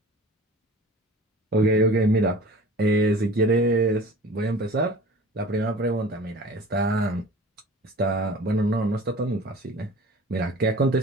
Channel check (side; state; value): both; normal; correlation 0.42